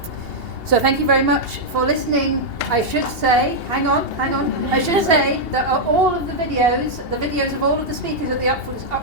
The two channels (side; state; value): left; late; 2.8 ms